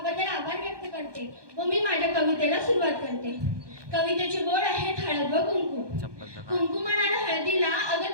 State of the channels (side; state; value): left; late; 1.2 ms